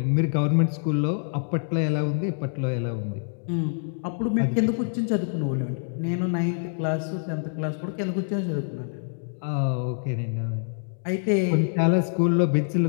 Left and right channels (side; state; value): right; silent; digital silence